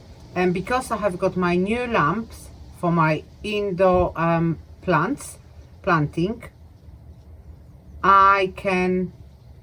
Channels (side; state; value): both; identical; correlation 1.00